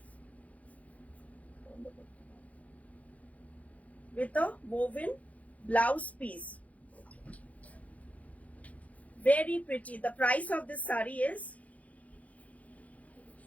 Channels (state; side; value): late; right; 0.069 ms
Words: With a woven blouse piece. Very pretty. The price of this sari is